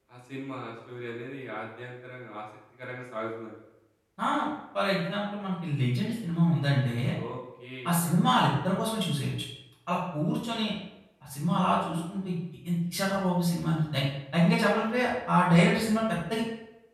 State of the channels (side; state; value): both; identical; correlation 1.00